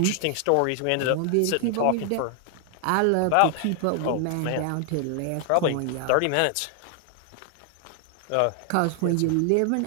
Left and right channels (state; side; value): different; both; correlation 0.00